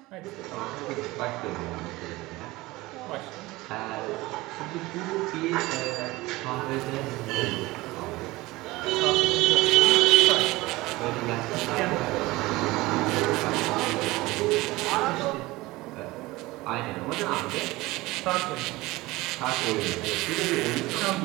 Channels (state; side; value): quieter; left; 20.1 dB